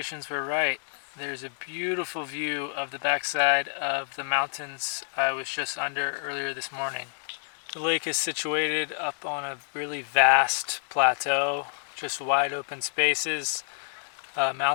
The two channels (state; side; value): silent; right; digital silence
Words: were right. There's a beautiful view of the backside of the mountains I was just under earlier this morning. The lake is situated up on a really vast plateau, just wide open spaces,